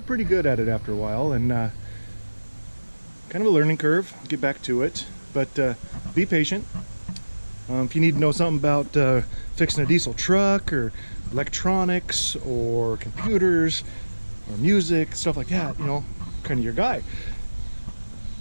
pretty good at it after a while, and kind of a learning curve. Get back to it, but be patient. If you need to know something about fixing a diesel truck or electronics or computers or music, stuff like that, you know, kind of your guy.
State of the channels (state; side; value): inverted; both; correlation -1.00